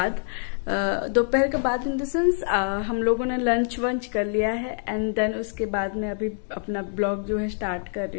इन द सेंस हम लोगों ने लंच वंच कर लिया है एंड देन उसके बाद मैं अभी अपना ब्लॉग जो है स्टार्ट कर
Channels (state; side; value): silent; right; 61 dB below the other